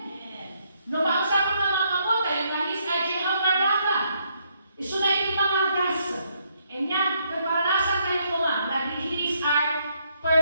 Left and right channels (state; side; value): inverted; both; correlation -0.73